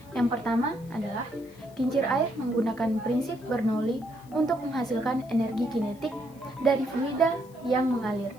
Yang pertama adalah kincir air menggunakan prinsip Bernoulli untuk menghasilkan energi kinetik dari fluida yang mengalir.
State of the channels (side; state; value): left; noise; hiss, 27 dB below the sound